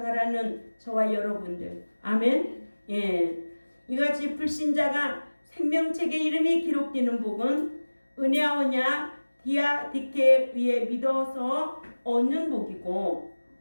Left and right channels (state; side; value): inverted; both; correlation -1.00